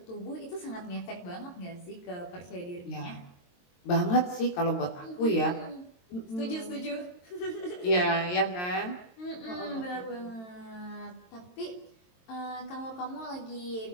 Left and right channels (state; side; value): late; right; 22 ms